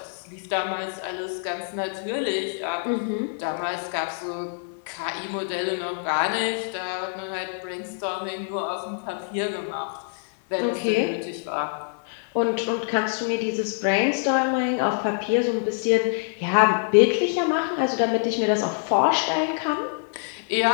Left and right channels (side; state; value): right; silent; 61 dB below the other